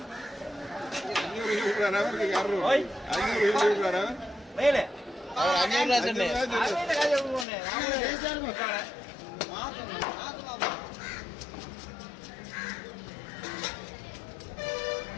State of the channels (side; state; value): right; drops out; at 7.5 s